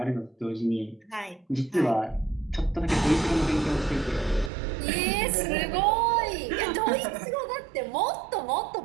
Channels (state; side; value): drops out; left; at 4.5 s